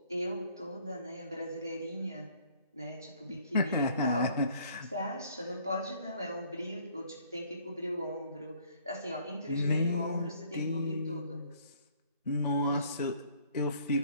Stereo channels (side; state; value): both; inverted; correlation -0.60